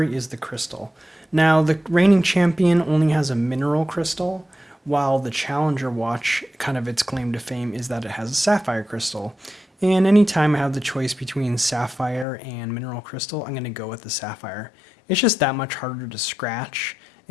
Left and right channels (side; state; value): right; drops out; at 12.2 s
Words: is the crystal. Now, the reigning champion only has a mineral crystal, while the Challenger watch, kind of its claim to fame, is that it has a sapphire crystal. And anytime I have the choice between sapphire and mineral crystal, I'm going to go with the sapphire. It's just that much harder to scratch,